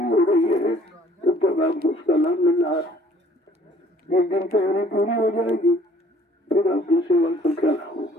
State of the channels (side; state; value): both; normal; correlation 0.57